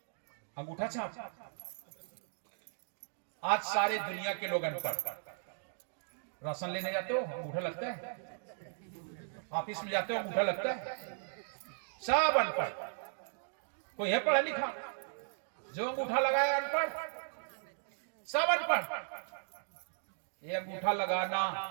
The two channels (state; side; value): silent; left; digital silence